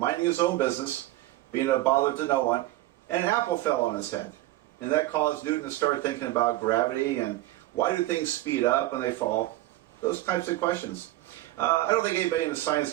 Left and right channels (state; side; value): quieter; left; 16.7 dB